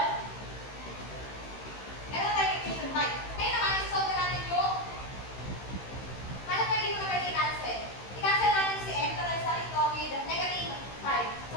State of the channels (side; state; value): right; late; 15 ms